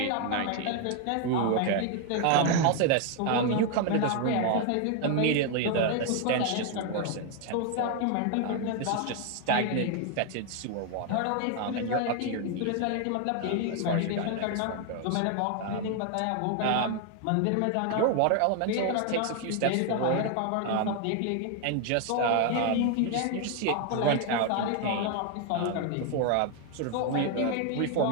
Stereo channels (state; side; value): different; both; correlation 0.01